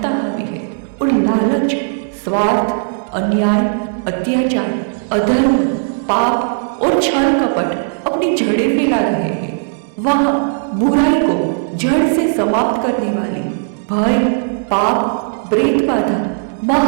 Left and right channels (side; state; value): left; silent; digital silence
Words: हावी है और लालच, स्वार्थ, अन्याय, अत्याचार, अधर्म, पाप और छल कपट अपनी जड़ें फैला रहे हैं। वहाँ बुराई को जड़ से समाप्त करने वाली भय, पाप, प्रेत बाधा,